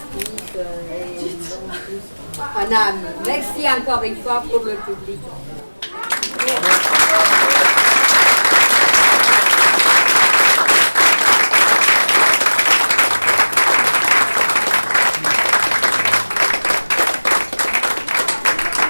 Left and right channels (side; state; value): both; inverted; correlation -1.00